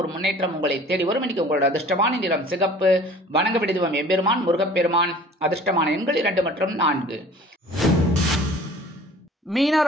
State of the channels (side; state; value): both; normal; correlation 0.47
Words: ஒரு முன்னேற்றம் உங்களை தேடி வரும். இன்னைக்கு உங்களோட அதிர்ஷ்டமான நிறம் சிகப்பு. வணங்க வேண்டிய தெய்வம் எம்பெருமான் முருகப்பெருமான். அதிர்ஷ்டமான எண்கள் 2 மற்றும் 4.